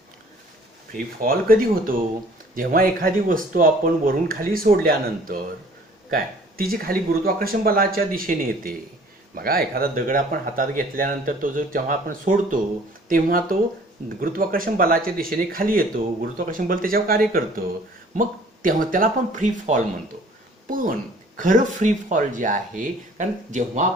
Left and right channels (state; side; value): normal; both; correlation 0.53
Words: फ्री फॉल कधी होतो? जेव्हा एखादी वस्तू आपण वरून खाली सोडल्यानंतर काय तिची खाली गुरुत्वाकर्षण बलाच्या दिशेने येते. बघा, एखादा दगड आपण हातात घेतल्यानंतर तो जो जेव्हा आपण सोडतो तेव्हा तो गुरुत्वाकर्षण बलाच्या दिशेने खाली येतो. गुरुत्वाकर्षण बल त्याच्यावर कार्य करतं. मग तेव्हा त्याला आपण फ्री फॉल म्हणतो. पण खरं फ्री फॉल जे आहे, कारण जेव्हा